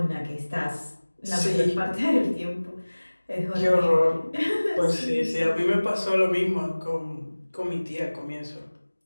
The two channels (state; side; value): inverted; both; correlation -1.00